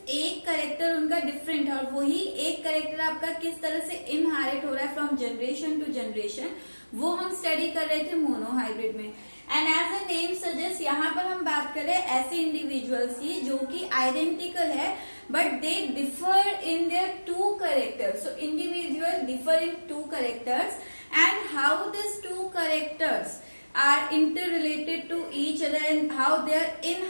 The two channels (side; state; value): both; inverted; correlation -1.00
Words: एक करेक्टर उनका डिफरेंट है और वही एक करेक्टर आपका किस तरह से इनहेरिट हो रहा है फ्रॉम जनरेशन टू जनरेशन, वो हम स्टडी कर रहे थे मोनोहाइब्रिड में। And as a name suggest यहाँ पर हम बात कर रहे हैं ऐसे इंडिविजुअल्स की जो कि आइडेंटिकल है but they differ in their two characters. So individuals differ in two characters, and how these two characters are interrelated to each other and how they are